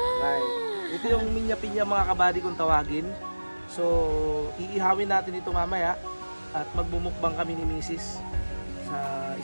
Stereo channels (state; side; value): inverted; both; correlation -1.00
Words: Ito yung minya-pinya mga kabady kung tawagin. So iihawin natin ito mamaya at magmumukbang kami ni Mrs.